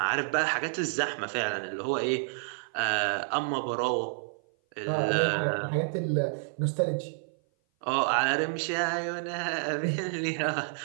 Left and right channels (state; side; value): silent; left; 55 dB below the other